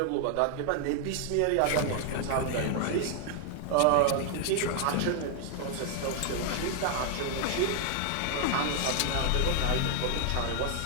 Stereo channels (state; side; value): different; both; correlation 0.00